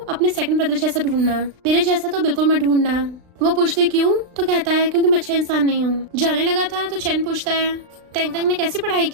अपने सेकंड ब्रदर जैसा ढूंढना, मेरे जैसा तो बिल्कुल मत ढूंढना। वो पूछती क्यों? तो कहता है क्योंकि मैं अच्छा इंसान नहीं हूँ। जाने लगा था तो चैन पूछता है टेंग टेंग ने कैसी पढ़ाई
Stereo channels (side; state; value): left; late; 35 ms